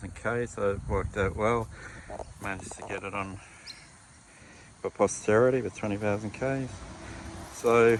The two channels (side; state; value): both; identical; correlation 1.00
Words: k, so it worked out well. Managed to get it on for posterity with 20,000 k's. So